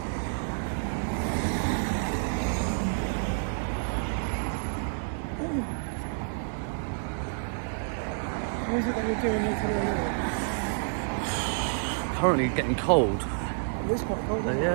What is it that you're doing here today? currently getting cold. It's quite cold, isn't it?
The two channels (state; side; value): silent; left; digital silence